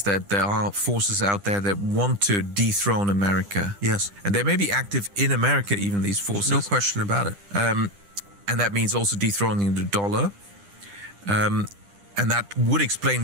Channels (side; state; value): left; late; 10 ms